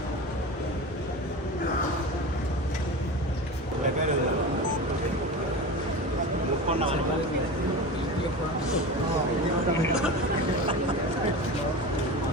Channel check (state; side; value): normal; both; correlation 0.28